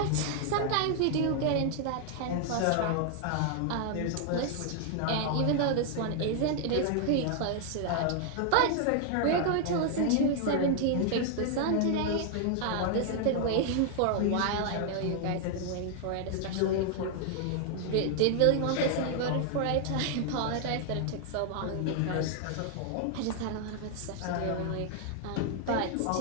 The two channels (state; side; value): different; both; correlation 0.00